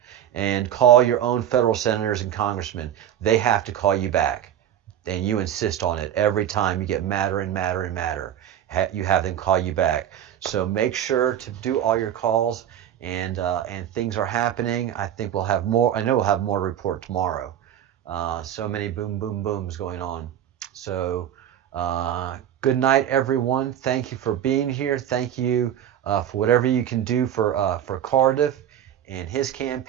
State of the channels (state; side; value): quieter; left; 10.5 dB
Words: And call your own federal senators and congressmen. They have to call you back. And you insist on it every time. You get madder and madder and madder. You have them call you back. So make sure to do all your calls, and things are happening. I think we'll have more. I know we'll have more to report tomorrow. So many boom, boom, booms going on. So good night, everyone. Thank you for being here. Thank you for whatever you can do for Cardiff and his